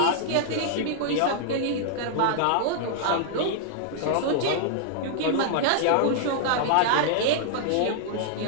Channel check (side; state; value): both; different; correlation -0.01